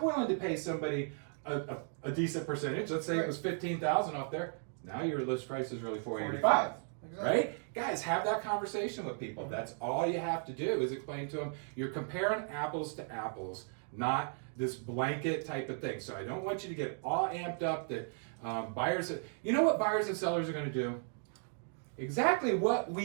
willing to pay somebody a decent percentage, let's say it was $15,000 off there, now your list price is really $485. Exactly. Right? Guys, have that conversation with people. That's all you have to do is explain to them. You're comparing apples to apples, not this blanket type of thing. So I don't want you to get all amped up that buyers, you know what buyers and sellers are going to do? Exactly what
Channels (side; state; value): left; silent; 54 dB below the other